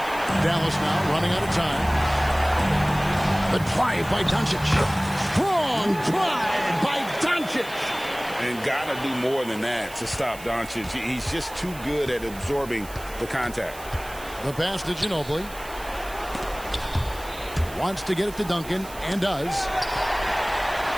Dallas now running out of time. The drive by Doncic. Strong drive by Doncic. And got to do more than that to stop Doncic. He's just too good at absorbing the contact. The pass to Ginobili. Wants to get it to Duncan, and does.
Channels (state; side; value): noise; right; hiss, 17 dB below the sound